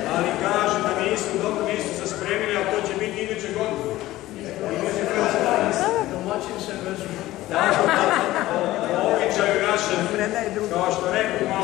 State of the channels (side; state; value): right; quieter; 16.3 dB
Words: Ali kaže da nisu se spremili, a to će biti iduće godine. Običaju našem, kao što rekao